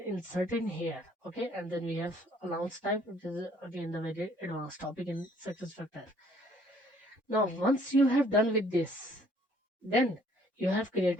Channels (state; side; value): normal; both; correlation 0.61